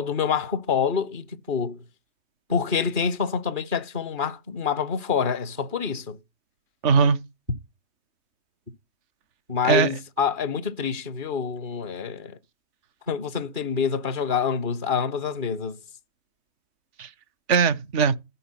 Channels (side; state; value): left; late; 2.4 ms